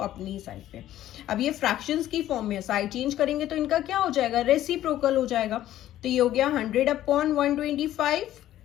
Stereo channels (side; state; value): right; quieter; 13.1 dB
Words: साइड पे। अब ये फ्रैक्शंस की फॉर्म में, साइड चेंज करेंगे तो इनका क्या हो जाएगा, रेसिप्रोकल हो जाएगा, तो ये हो गया 100/125।